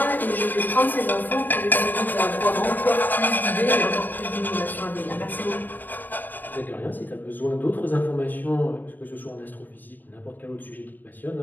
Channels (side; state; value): right; late; 0.089 ms